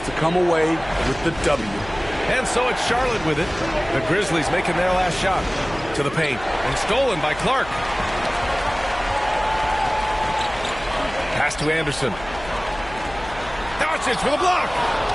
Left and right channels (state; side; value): noise; left; hum, 16 dB below the sound